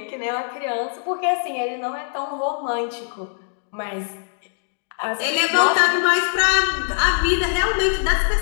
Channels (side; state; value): right; silent; digital silence